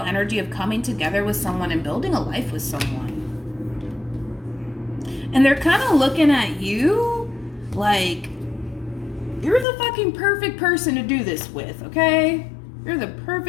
energy of coming together with someone and building a life with someone. And they're kind of looking at you like, you're the fucking perfect person to do this with, okay? You're the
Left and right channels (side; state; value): right; drops out; at 9.7 s